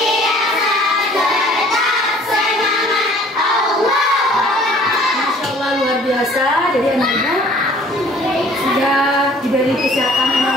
tetap semangat Allah. Masya Allah luar biasa. Jadi anak Ibu sudah diberi kesehatan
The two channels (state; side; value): normal; both; correlation 0.54